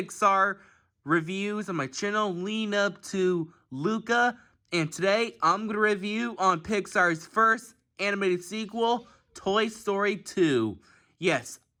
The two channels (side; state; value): both; identical; correlation 1.00